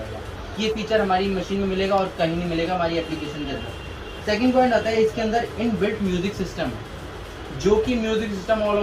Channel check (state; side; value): identical; both; correlation 1.00